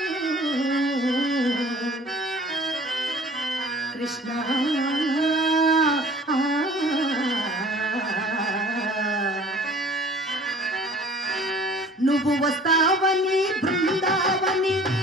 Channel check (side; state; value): both; normal; correlation 0.49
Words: కృష్ణ నువ్వు వస్తావని బృందావని